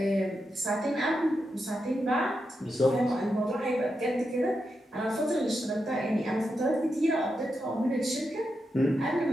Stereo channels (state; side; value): normal; both; correlation 0.86